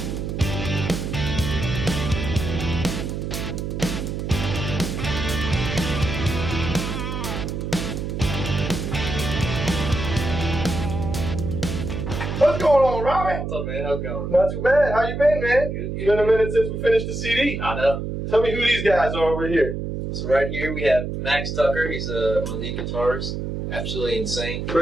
What's going on, Robbie? What's up, man? How's it going? Not too bad. How you been, man? Good. It's been a minute since we finished the CD. I know. Tell me who these guys are over here. So right here we have Max Tucker. He's one of the guitarist. Absolutely insane.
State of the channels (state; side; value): noise; right; hum, 4 dB below the sound